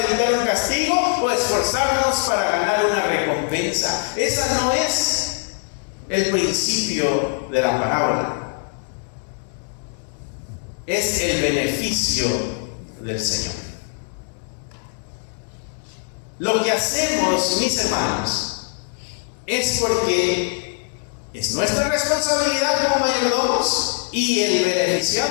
evitar un castigo o esforzarnos para ganar una recompensa. Esa no es el principio de la parábola. Es el beneficio del Señor. Lo que hacemos, mis hermanos, es porque es nuestra responsabilidad como mayordomos y el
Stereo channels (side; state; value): right; silent; 59 dB below the other